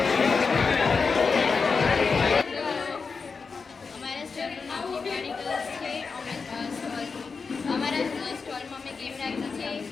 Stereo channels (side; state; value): right; quieter; 4.9 dB